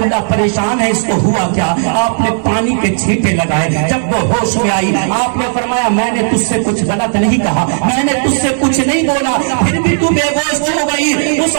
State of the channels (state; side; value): silent; left; digital silence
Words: پریشان ہے، اس کو ہوا کیا؟ آپ نے پانی کے چھینٹے لگائے، جب وہ ہوش میں آئی آپ نے فرمایا میں نے تجھ سے کچھ غلط نہیں کہا، میں نے تجھ سے کچھ نہیں بولا، پھر بھی تو بے ہوش ہو گئی۔ اس